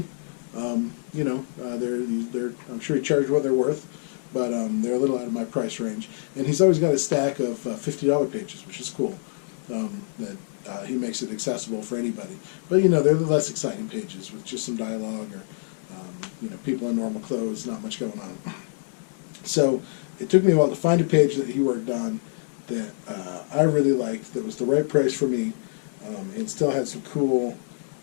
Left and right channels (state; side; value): silent; right; 61 dB below the other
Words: They're I'm sure he charged what they're worth, but they're a little out of my price range. And he's always got a stack of $50 pages, which is cool. That he makes it accessible for anybody. But they're the less exciting pages with just some dialogue or people in normal clothes, not much going on. So it took me a while to find a page that he worked on that I really liked, that was the right price for me, and still had some cool